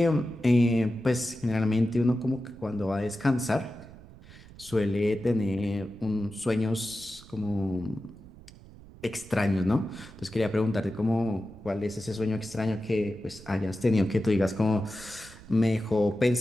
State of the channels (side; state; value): right; noise; rumble, 20 dB below the sound